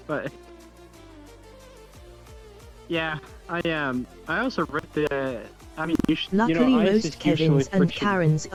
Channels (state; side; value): identical; both; correlation 1.00